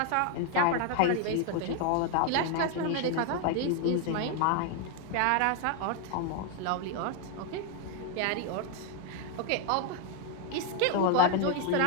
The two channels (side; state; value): both; different; correlation 0.01